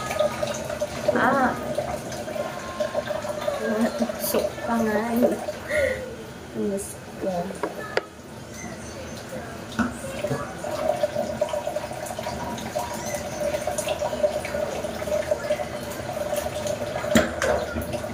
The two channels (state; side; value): identical; both; correlation 1.00